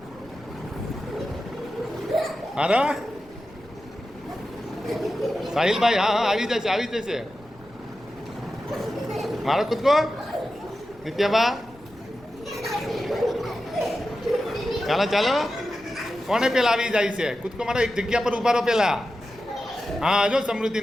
મારો. સાહિલભાઈ, હા આવી જશે. મારો કૂદકો. નિત્યાબા, ચાલો કોને પેલા આવી જાય છે? કૂદકો મારો. એક જગ્યા પર ઉભા રહો પેલા. હા, જો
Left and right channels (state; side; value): noise; left; rumble, 25 dB below the sound